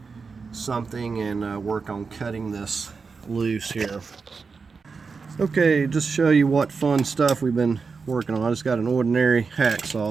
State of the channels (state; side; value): quieter; left; 4.9 dB